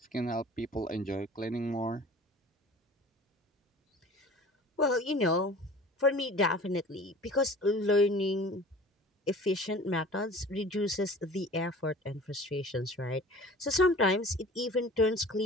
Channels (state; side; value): normal; both; correlation 0.44